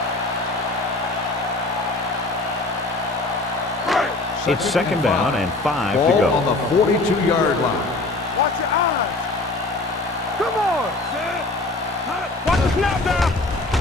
It's second down and 5 to Ball go. on the 42-yard line. Watch your eyes. Come on. Watch the snap down.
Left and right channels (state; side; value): quieter; right; 3.0 dB